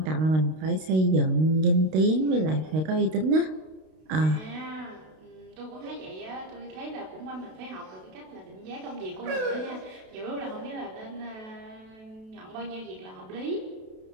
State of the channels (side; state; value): left; late; 32 ms